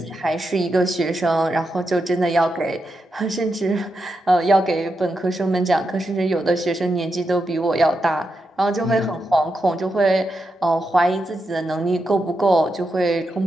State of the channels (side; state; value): both; normal; correlation 0.86